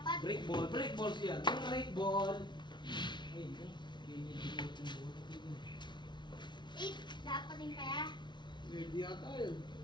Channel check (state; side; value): late; right; 0.22 ms